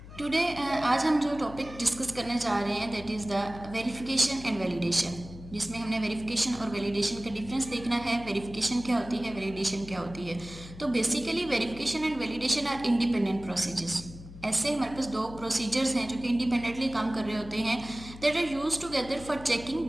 टुडे आज हम जो टॉपिक डिस्कस करने जा रहे हैं that is the verification and validation, जिसमें हमने वेरिफिकेशन और वैलिडेशन का डिफरेंस देखना है। वेरिफिकेशन क्या होती है, वैलिडेशन क्या होती है। तो basically verification and validation are independent procedures. ऐसे हमारे पास दो प्रोसीजर्स हैं जो कि इंडिपेंडेंटली काम कर रहे होते हैं, that are use together for checking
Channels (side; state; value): left; noise; hum, 15 dB below the sound